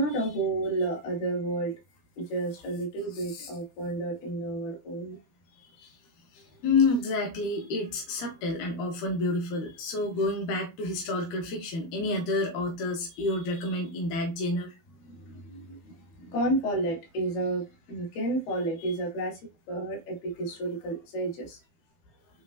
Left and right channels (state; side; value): late; right; 12 ms